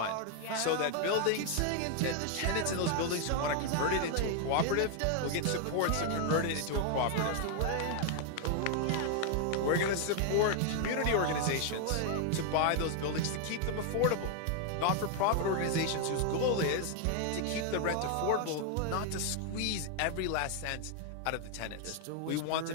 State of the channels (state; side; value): different; both; correlation 0.00